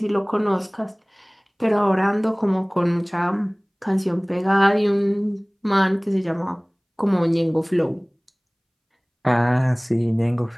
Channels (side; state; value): both; identical; correlation 1.00